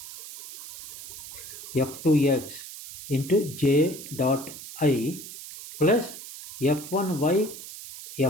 f2x into j dot I plus f1y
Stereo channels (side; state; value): right; noise; hiss, 13 dB below the sound